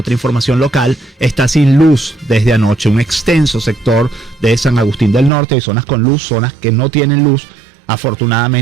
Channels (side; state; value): left; drops out; at 5.3 s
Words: información local, está sin luz desde anoche. Un extenso sector de San Agustín del Norte, hay zonas con luz, zonas que no tienen luz.